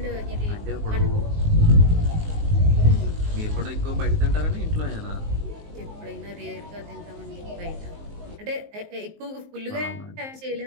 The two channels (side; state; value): left; late; 19 ms